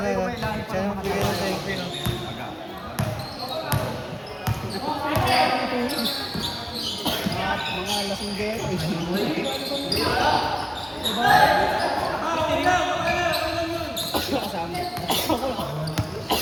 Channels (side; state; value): both; identical; correlation 1.00